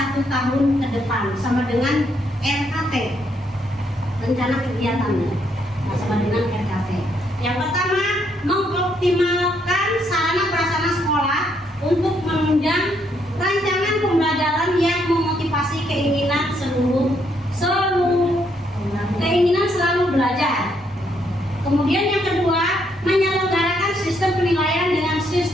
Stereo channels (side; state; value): both; normal; correlation 0.73